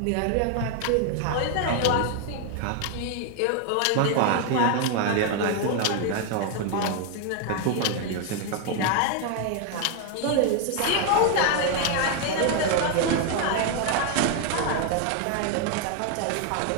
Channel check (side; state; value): both; different; correlation 0.01